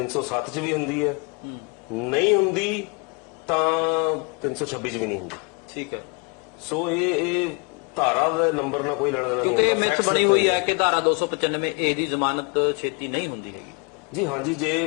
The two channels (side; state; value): right; quieter; 33.0 dB